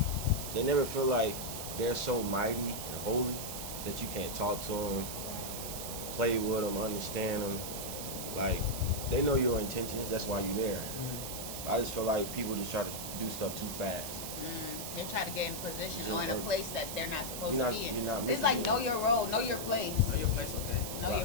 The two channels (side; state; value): right; noise; hiss, 6 dB below the sound